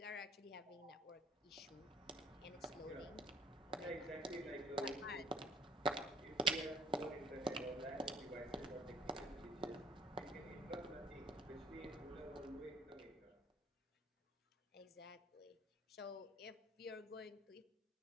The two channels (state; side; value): normal; both; correlation 0.56